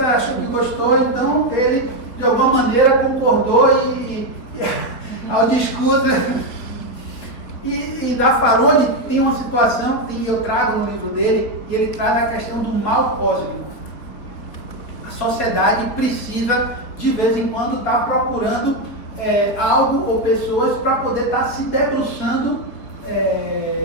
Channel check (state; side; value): late; right; 4.2 ms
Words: achou que gostou, então ele de alguma maneira concordou e ao discurso. E Zaffaroni tem uma situação que eu trago no livro dele, e ele traz a questão do mal cósmico. A sociedade precisa, de vez em quando, estar procurando algo ou pessoas para poder estar se debruçando